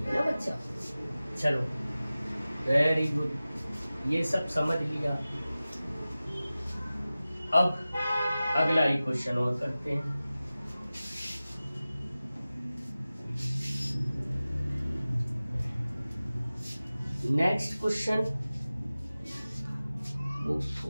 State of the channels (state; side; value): inverted; both; correlation -0.96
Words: ना बच्चा। चलो, वेरी गुड। ये सब समझ लिया। अब अगला ही क्वेश्चन और करते हैं। नेक्स्ट क्वेश्चन,